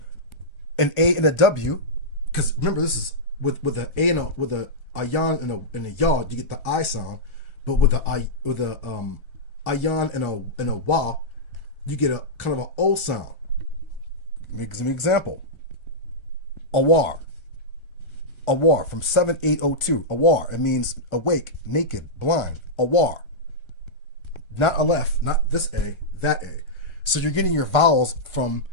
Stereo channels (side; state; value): right; late; 1.5 ms